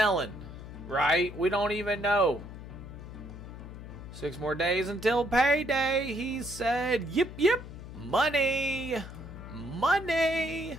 Right? We don't even know. 6 more days until payday, he said. Yip, yip. Money. Money.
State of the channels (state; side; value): noise; left; hum, 12 dB below the sound